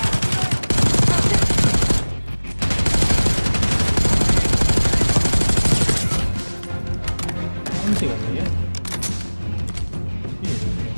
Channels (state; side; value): inverted; both; correlation -1.00